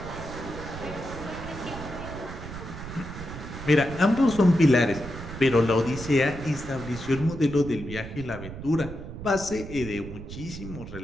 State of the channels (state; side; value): noise; right; rumble, 10 dB below the sound